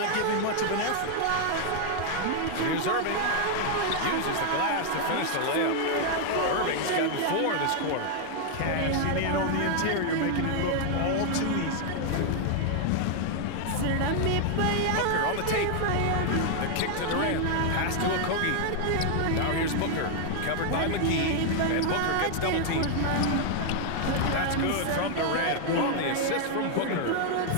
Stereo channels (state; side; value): different; both; correlation 0.00